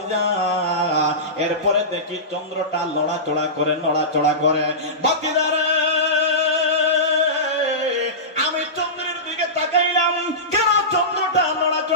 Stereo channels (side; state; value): both; normal; correlation -0.18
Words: এরপরে দেখি চন্দ্রটা নড়াচড়া করে। বাতিজারে, আমি চন্দ্রের দিকে তাকাইলাম, কেন চন্দ্রটা